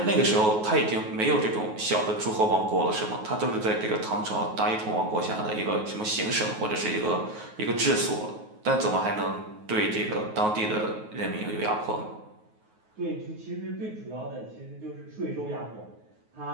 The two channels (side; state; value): left; late; 9.4 ms